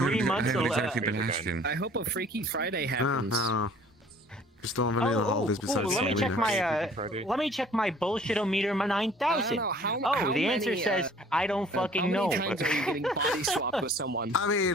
months. I haven't exactly been asking. I hope a Freaky Friday happens. Just don't have any of the holidays besides let me check Halloween. my let me check my bullshit-o-meter 9000. How The answer many, says I don't fucking know. How many times are you getting body swapped with someone? I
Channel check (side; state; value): both; normal; correlation 0.52